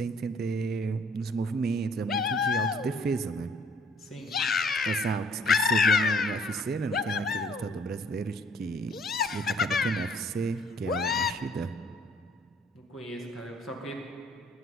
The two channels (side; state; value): both; normal; correlation 0.60